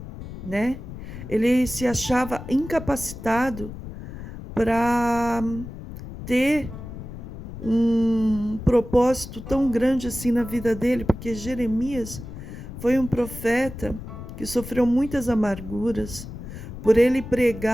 né? Ele se achava incapacitado para ter um propósito tão grande assim na vida dele, porque Jeremias foi um profeta que sofreu muitas amarguras por ele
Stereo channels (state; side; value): noise; left; rumble, 11 dB below the sound